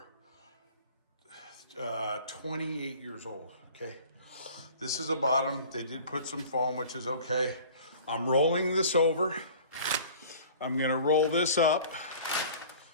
28 years old, okay? This is the bottom. They did put some foam, which is okay. I'm rolling this over. I'm gonna roll this up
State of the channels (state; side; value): inverted; both; correlation -0.45